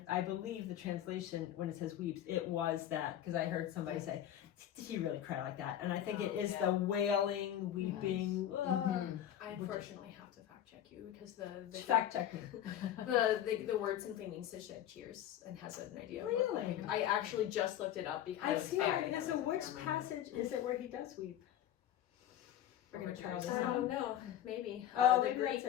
I believe the translation, when it says weeps, it was that, because I heard somebody say, did he really cry like that? And I think it is the wailing, weeping. I unfortunately have to fact check you because the fact check me. the word simply means to shed tears and has an idea. Really? I actually just looked it up because I've seen it. Because of which passage is it where he does weep? I don't know. Maybe. Oh, the maybe Greek that's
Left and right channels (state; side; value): quieter; right; 11.2 dB